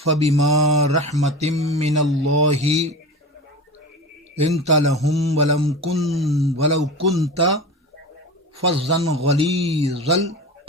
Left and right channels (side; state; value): both; normal; correlation 0.29